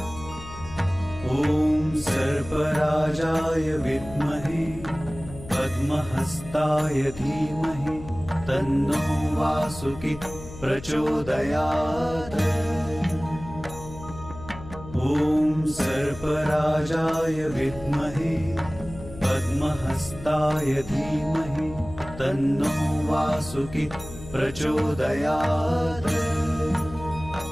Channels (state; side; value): noise; left; hum, 14 dB below the sound